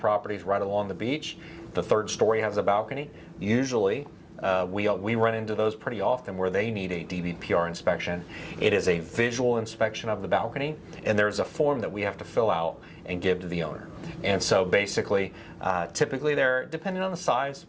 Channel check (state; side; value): identical; both; correlation 1.00